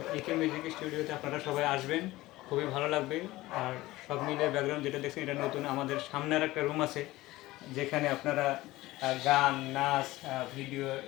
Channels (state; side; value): quieter; right; 18.2 dB